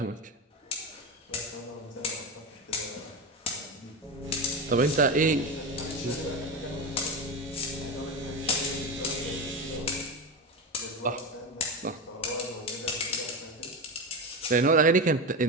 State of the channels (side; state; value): both; normal; correlation 0.19